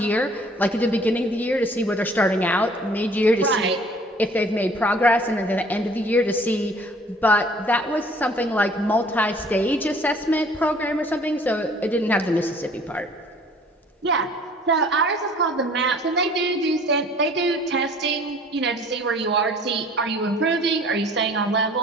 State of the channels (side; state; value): both; normal; correlation 0.53